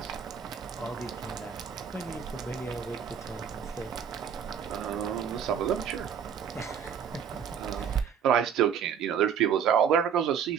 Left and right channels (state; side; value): quieter; left; 7.9 dB